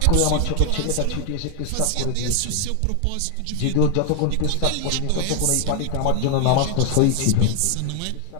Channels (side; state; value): both; different; correlation 0.00